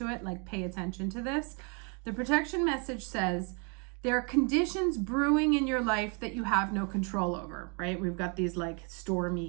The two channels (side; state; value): left; quieter; 35.7 dB